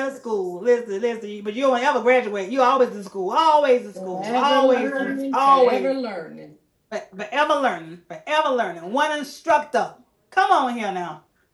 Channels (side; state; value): both; identical; correlation 1.00